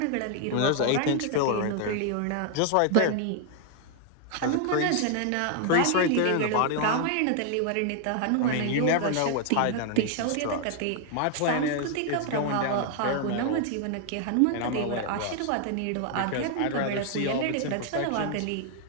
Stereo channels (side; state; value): both; different; correlation 0.00